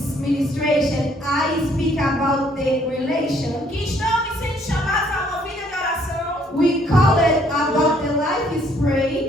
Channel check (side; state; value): both; normal; correlation 0.65